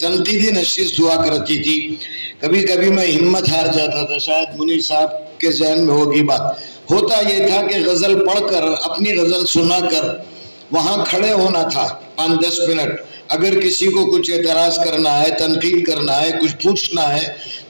نشست ہوا کرتی تھی، کبھی کبھی میں ہمت ہار جاتا تھا، شاید منیر صاحب کے ذہن میں ہوگی بات، ہوتا یہ تھا کہ غزل پڑھ کر اپنی غزل سنا کر وہاں کھڑے ہونا تھا 5-10 منٹ، اگر کسی کو کچھ اعتراض کرنا ہے، تنقید کرنا ہے، کچھ پوچھنا ہے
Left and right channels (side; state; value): both; inverted; correlation -1.00